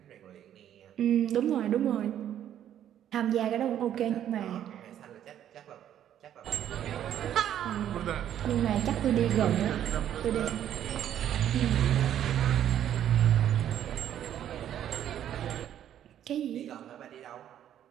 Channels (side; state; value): left; quieter; 10.6 dB